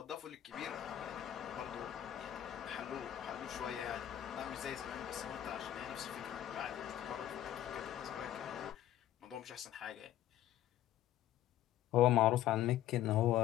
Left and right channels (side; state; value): right; quieter; 12.4 dB